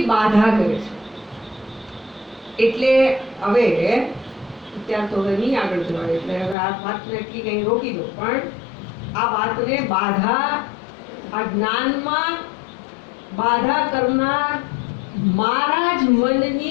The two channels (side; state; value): right; drops out; at 6.6 s